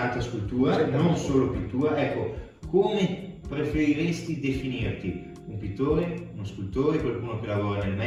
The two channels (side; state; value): both; identical; correlation 1.00